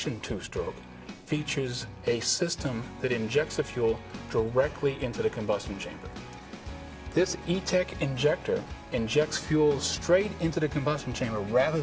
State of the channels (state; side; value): identical; both; correlation 1.00